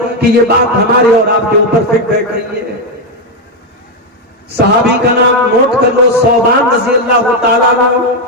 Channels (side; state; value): both; normal; correlation 0.04